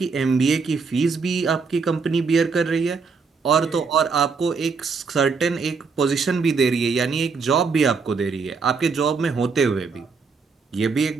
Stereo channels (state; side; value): quieter; left; 4.9 dB